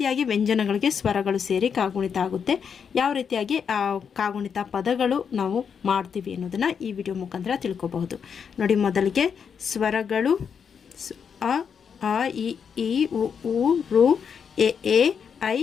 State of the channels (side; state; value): right; quieter; 6.9 dB